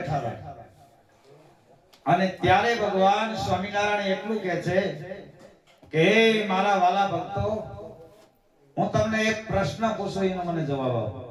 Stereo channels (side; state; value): both; identical; correlation 1.00